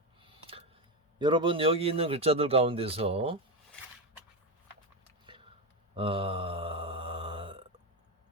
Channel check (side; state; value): both; normal; correlation 0.12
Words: 여러분, 여기 있는 글자들 가운데서